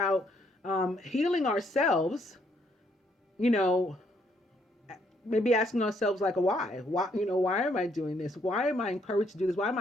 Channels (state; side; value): normal; both; correlation 0.70